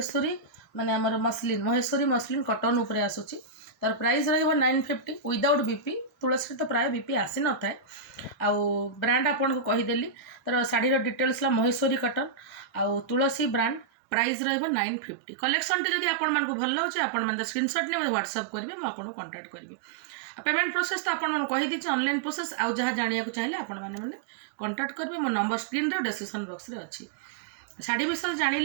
माने आमर मसलिन महेश्वरी मसलिन कटन उपरे आसुची। तार प्राइस रहिबो 950 विदाउट बीपी। तुलसी तो प्राय बीपी आसी न थाए आउ ब्रांड आपन को कहि देली। तार साड़ी रो डिटेल्स ला महेश्वरी कटन आउ तुलसी ब्रांड प्राइस रहिबो 950। कलेक्शन टी जदि आपण मन को भल लागुचे आपण मन स्क्रीनशॉट ने व्हाट्सएप करिवे म आपण कांटेक्ट करिवे। पेमेंट प्रोसेस तो आपण मन कहि दिछि ऑनलाइन प्रोसेस आउ जहा जानिया को चाहिले आपण माने कांटेक्ट करिवे। मो नंबर स्क्रीन रे डिस्क्रिप्शन बॉक्स रे अछि। साड़ी विषय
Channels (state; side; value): drops out; left; at 13.9 s